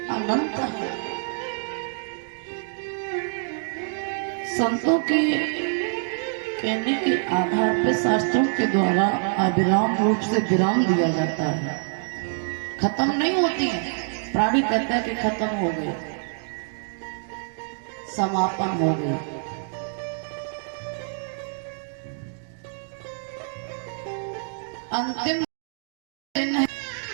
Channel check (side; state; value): left; silent; 61 dB below the other